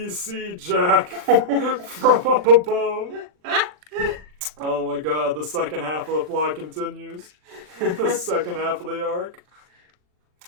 Jack from up above. Oh my god, the second half of the plot continues. The second half of the arc.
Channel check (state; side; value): late; left; 40 ms